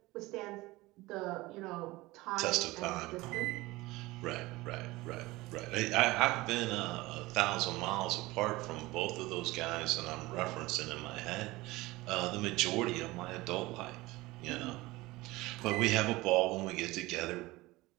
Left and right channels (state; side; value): quieter; left; 20.3 dB